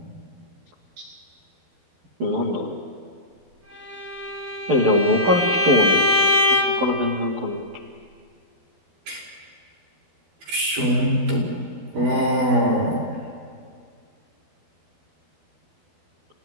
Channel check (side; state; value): left; late; 12 ms